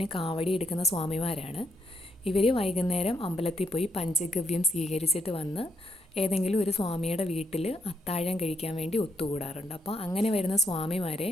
കാവടി എടുക്കുന്ന സ്വാമിമാരാണ്. ഇവർ വൈകുന്നേരം അമ്പലത്തിൽ പോയി പഞ്ചഗവ്യം സ്വീകരിച്ചിട്ട് വന്ന് ഏതെങ്കിലും ഒരു സ്വാമിയുടെ വീട്ടിൽ അത്താഴം കഴിക്കാൻ വേണ്ടി ഒത്തുകൂടാറുണ്ട്. അപ്പോൾ അങ്ങനെ വരുന്ന സ്വാമിമാരെ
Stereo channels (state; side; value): normal; both; correlation 0.76